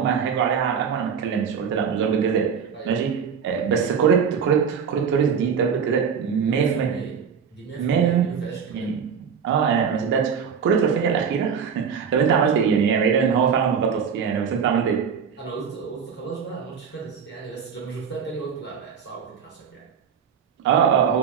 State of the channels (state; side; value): quieter; left; 6.8 dB